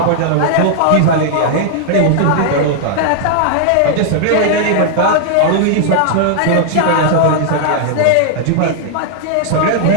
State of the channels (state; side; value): different; both; correlation -0.01